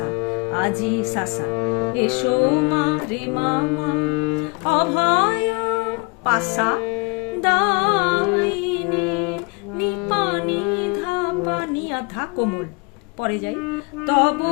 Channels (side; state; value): right; quieter; 30.8 dB